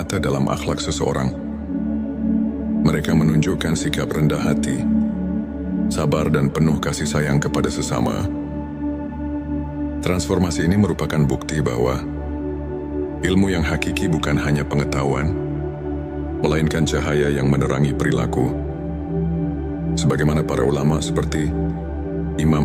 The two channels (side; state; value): both; identical; correlation 1.00